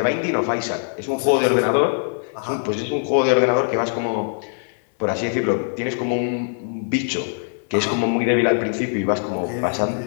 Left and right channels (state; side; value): silent; right; 59 dB below the other